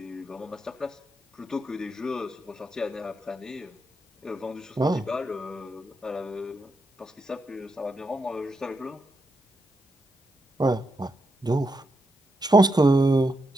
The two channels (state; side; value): normal; both; correlation 0.83